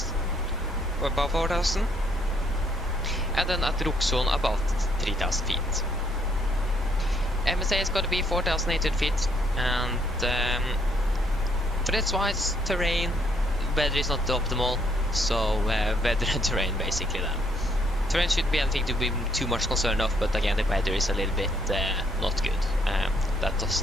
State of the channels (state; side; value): normal; both; correlation 0.69